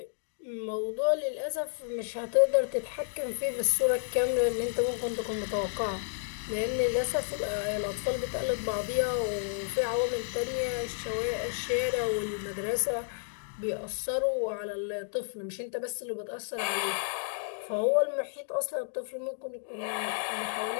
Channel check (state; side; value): silent; right; digital silence